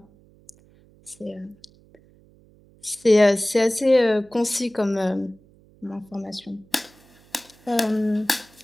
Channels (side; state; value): right; noise; hum, 29 dB below the sound